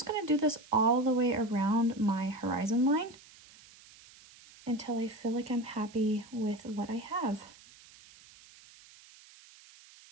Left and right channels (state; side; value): noise; right; hiss, 23 dB below the sound